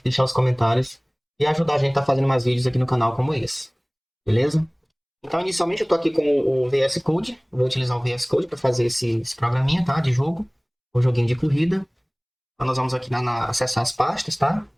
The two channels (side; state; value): both; identical; correlation 1.00